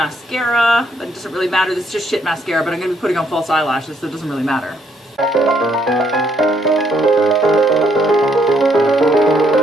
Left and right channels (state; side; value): normal; both; correlation 0.70